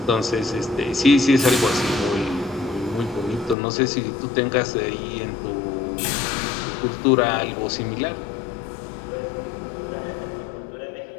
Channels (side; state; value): right; drops out; at 3.6 s